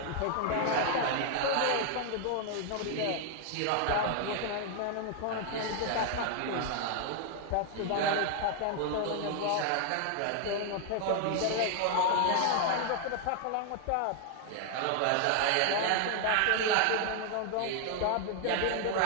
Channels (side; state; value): both; different; correlation 0.00